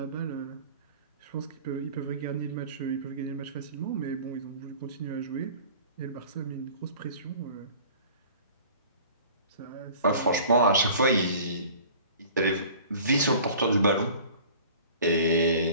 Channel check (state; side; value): inverted; both; correlation -0.45